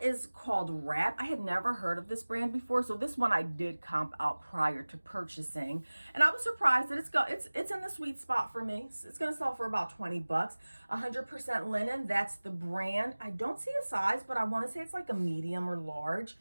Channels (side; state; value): both; inverted; correlation -1.00